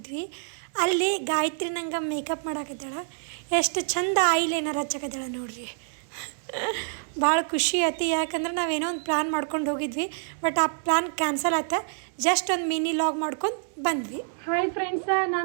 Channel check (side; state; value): left; silent; digital silence